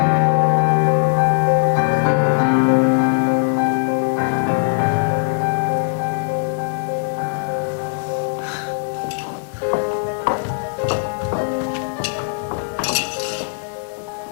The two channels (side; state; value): right; silent; digital silence